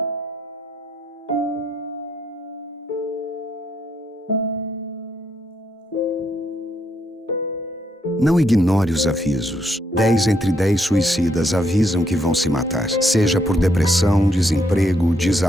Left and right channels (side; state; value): both; normal; correlation 0.75